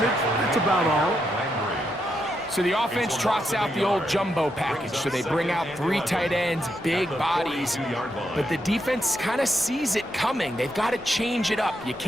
That's about all. So the offense trots out the old jumbo package. So they bring out 3 tight ends, big bodies, but the defense kind of sees it coming. They've got to change it up. You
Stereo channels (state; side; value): normal; both; correlation 0.81